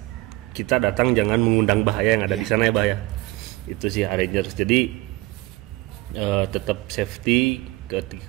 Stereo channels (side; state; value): left; quieter; 20.3 dB